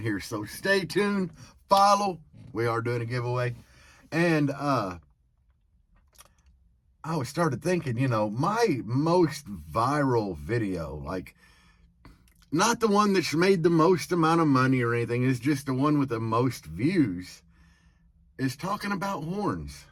here, so stay tuned, follow. We are doing a giveaway. And I started thinking, my most viral video, like not the one that's made the most amount of money or anything, is just the one with the most views, is talking about horns.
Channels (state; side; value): identical; both; correlation 1.00